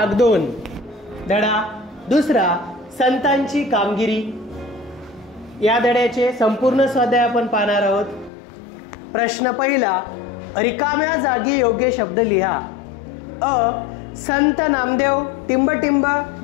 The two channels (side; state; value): right; drops out; at 8.3 s